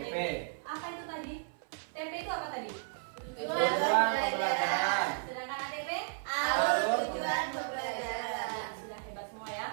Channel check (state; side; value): silent; left; 55 dB below the other